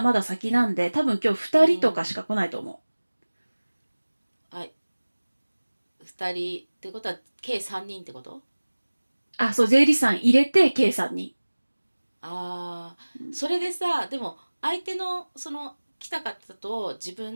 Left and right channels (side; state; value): both; inverted; correlation -1.00